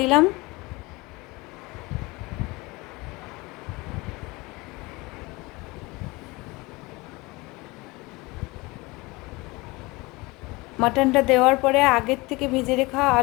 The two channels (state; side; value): quieter; right; 23.5 dB